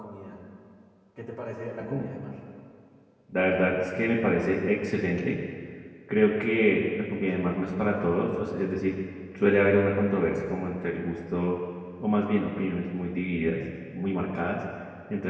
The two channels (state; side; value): identical; both; correlation 1.00